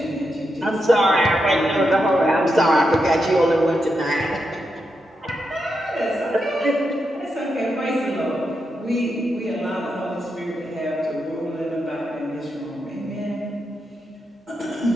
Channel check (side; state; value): both; normal; correlation 0.85